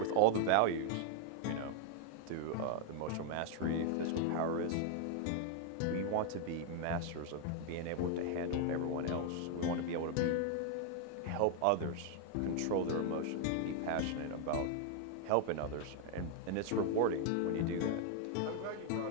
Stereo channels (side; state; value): both; different; correlation 0.00